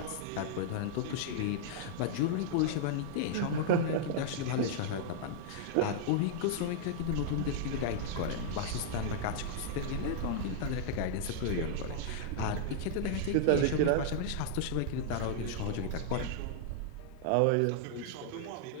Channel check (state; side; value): different; both; correlation -0.01